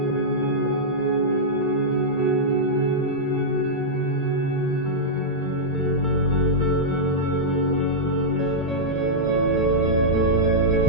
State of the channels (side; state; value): both; normal; correlation -0.09